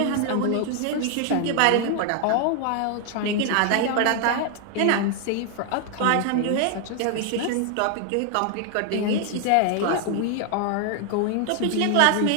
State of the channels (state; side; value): different; both; correlation 0.00